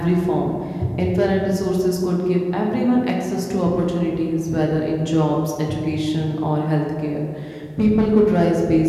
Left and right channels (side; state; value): both; identical; correlation 1.00